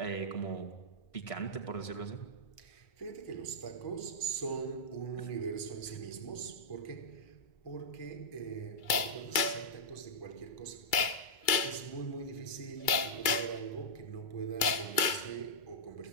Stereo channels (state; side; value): late; right; 2.3 ms